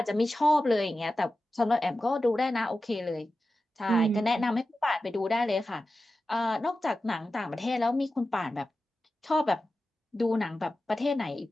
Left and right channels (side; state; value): both; normal; correlation 0.93